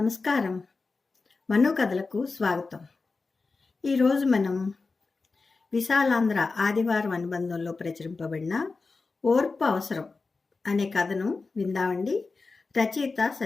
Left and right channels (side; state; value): right; quieter; 4.0 dB